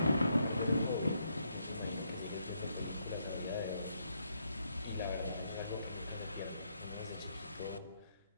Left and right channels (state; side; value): inverted; both; correlation -0.76